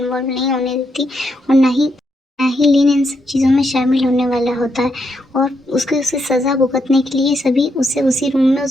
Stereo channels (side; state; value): both; normal; correlation 0.79